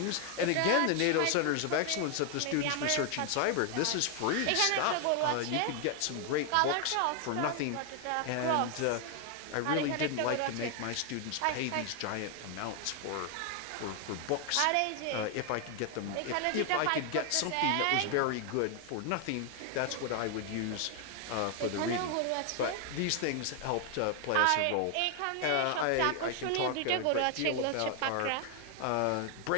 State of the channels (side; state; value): both; different; correlation 0.00